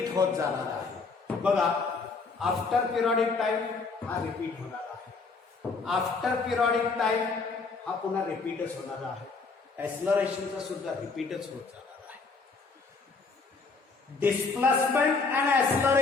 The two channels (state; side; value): quieter; right; 4.4 dB